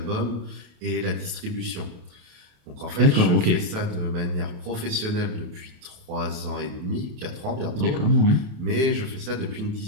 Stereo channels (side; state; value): left; late; 28 ms